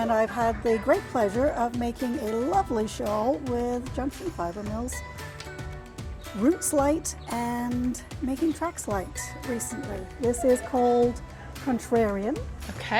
I've had the great pleasure of making a lovely shawl with junction fiber mills, roots light, and making tracks light recently. This is called Contrarian.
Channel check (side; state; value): both; identical; correlation 1.00